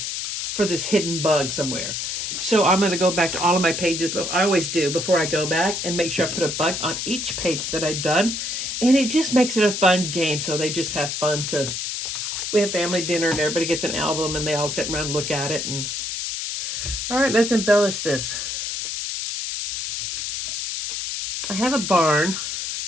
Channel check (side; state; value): left; noise; hiss, 3 dB below the sound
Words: for this hidden bug somewhere. So I'm going to go back to all of my pages, but I always do before I go back, and make sure I put a bug on each page that I've done. And it just makes it a fun game. So they just have fun we have family dinner and everybody gets an album and they all sit around and look at it. And all right, let's embellish this. I have a barn,